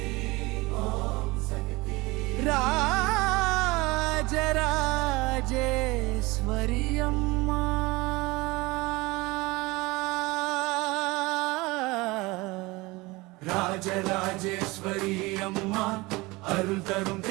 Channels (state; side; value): quieter; left; 22.7 dB